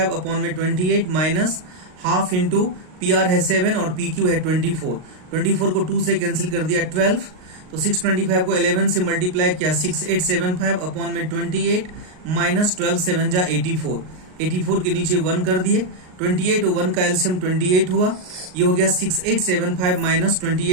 अपॉन में 28 माइनस हाफ इंटू PR है 7 और PQ है 24, 24 को 2 से कैंसिल कर दिया 12, तो 625 को 11 से मल्टीप्लाई किया 6875 अपॉन में 28 माइनस 12 7 जा 84, 84 के नीचे 1 कर दिए, 28 और 1 का एलसीएम 28 हुआ, ये हो गया 6875 माइनस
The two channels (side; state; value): left; late; 38 ms